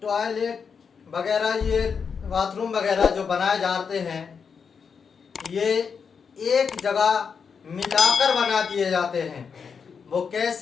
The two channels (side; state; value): right; quieter; 6.1 dB